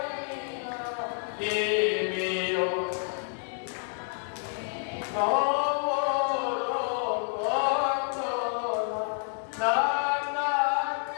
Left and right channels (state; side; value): silent; right; 56 dB below the other